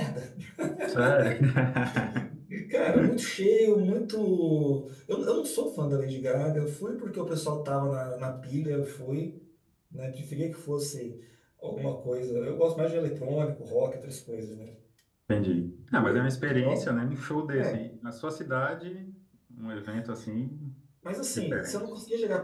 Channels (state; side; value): identical; both; correlation 1.00